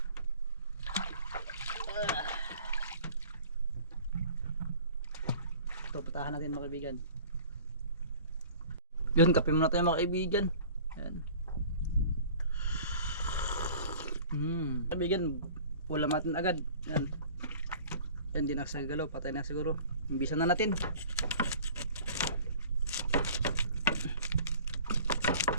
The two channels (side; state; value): both; inverted; correlation -0.46